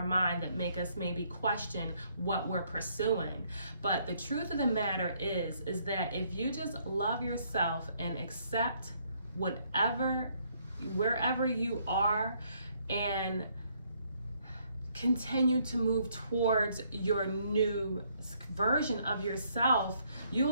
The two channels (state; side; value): inverted; both; correlation -0.69